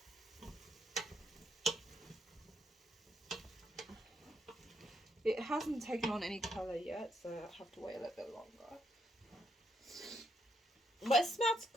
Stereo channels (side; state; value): both; normal; correlation 0.75